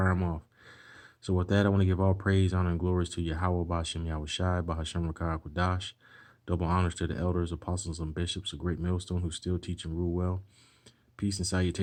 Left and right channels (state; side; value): identical; both; correlation 1.00